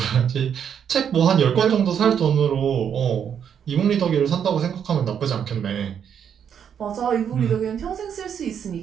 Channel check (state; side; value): quieter; left; 8.2 dB